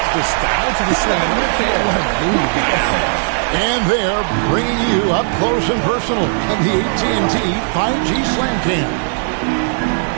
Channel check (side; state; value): left; silent; digital silence